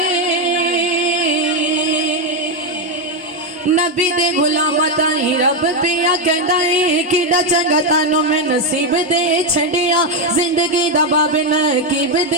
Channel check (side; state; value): both; normal; correlation 0.06